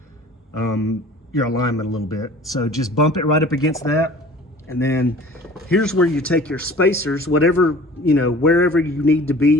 your alignment a little bit. So just bump it right up against that. And then here's where you take your spacers, whatever, you know, wherever you need to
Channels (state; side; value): normal; both; correlation 0.45